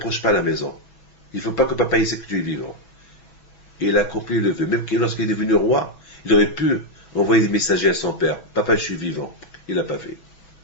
pas la maison. Il ne faut pas que papa sait que tu es vivant. Et il a accompli le vœu. Même lorsqu'il est devenu roi, il aurait pu envoyer des messagers à son père. Papa, je suis vivant. Il n'a pas fait.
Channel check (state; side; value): late; right; 6.1 ms